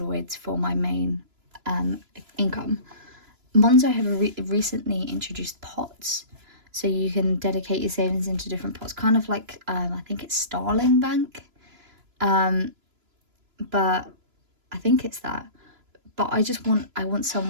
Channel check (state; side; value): late; left; 3.0 ms